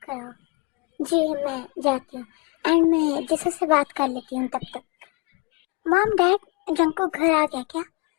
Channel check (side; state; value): right; quieter; 26.0 dB